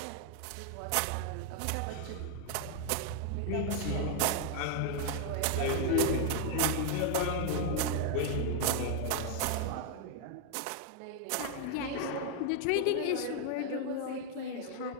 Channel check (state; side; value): different; both; correlation 0.01